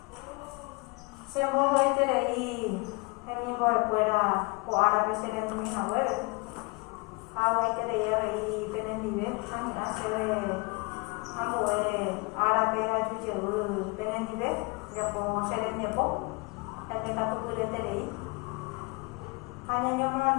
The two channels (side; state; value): right; quieter; 29.2 dB